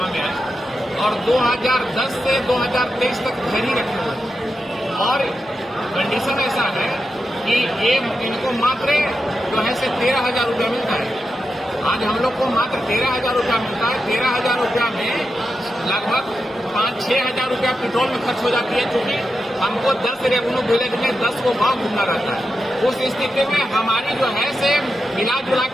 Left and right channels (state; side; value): normal; both; correlation 0.88